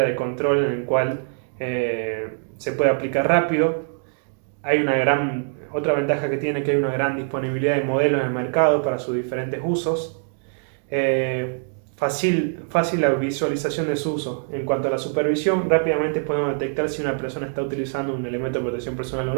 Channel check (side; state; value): left; silent; 63 dB below the other